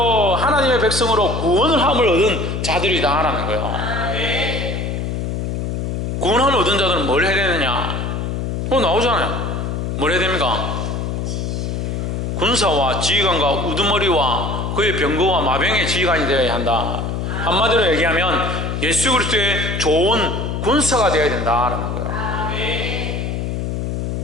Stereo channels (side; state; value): left; noise; hum, 2 dB below the sound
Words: 하나님의 백성으로 구원을 함을 얻은 자들이다라는 거예요. 구원함을 얻은 자들은 뭘 해야 되느냐? 나오잖아요. 뭘 해야 됩니까? 군사와 지휘관과 우두머리와 그의 병거와 마병의 지휘관이 되어야 한다. 한마디로 얘기하면 예수 그리스도의 좋은 군사가 되어야 된다라는 거예요.